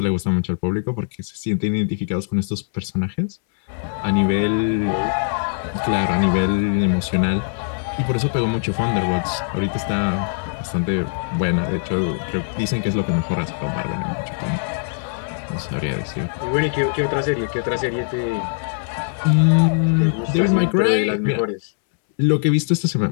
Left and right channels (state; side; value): silent; right; 65 dB below the other